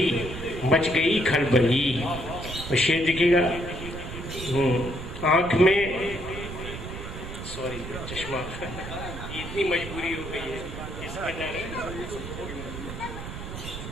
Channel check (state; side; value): noise; right; rumble, 9 dB below the sound